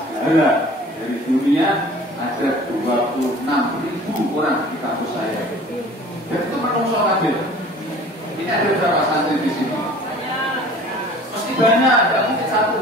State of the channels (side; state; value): both; normal; correlation 0.47